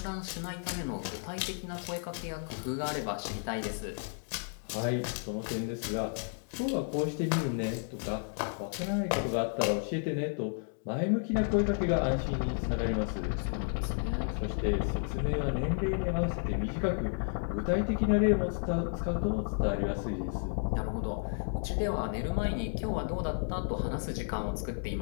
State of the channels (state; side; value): silent; right; 56 dB below the other